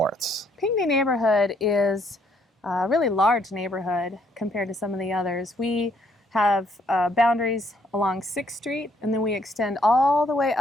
Pinckney Neighborhood is a really large neighborhood compared to some of the others. We have boundaries along 6th Street, and then we extend all the way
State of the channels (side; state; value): both; normal; correlation 0.69